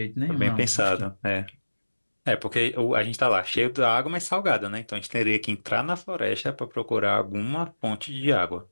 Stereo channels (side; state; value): both; inverted; correlation -1.00